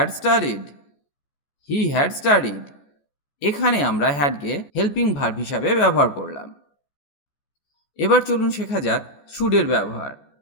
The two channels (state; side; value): late; right; 14 ms